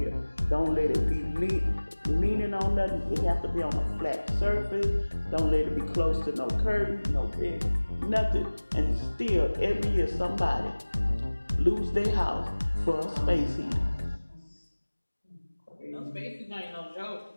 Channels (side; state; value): both; inverted; correlation -1.00